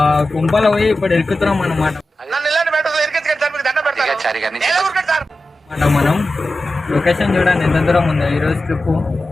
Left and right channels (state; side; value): normal; both; correlation 0.93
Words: కుంపలో పోయి ఇప్పుడు ఎక్కుతున్నాం అన్నమాట. మనం లొకేషన్ చూడండి ఎంత దూరం ఉందో. ఈరోజు ట్రిప్